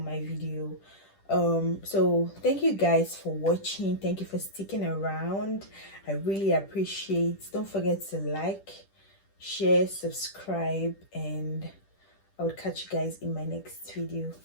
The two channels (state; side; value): late; right; 10 ms